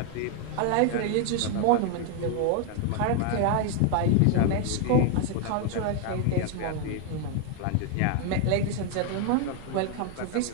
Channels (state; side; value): different; both; correlation 0.00